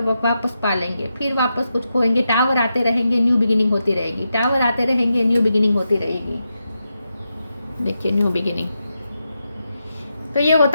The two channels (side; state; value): both; inverted; correlation -0.87